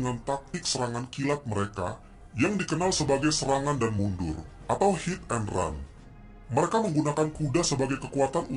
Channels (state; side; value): identical; both; correlation 1.00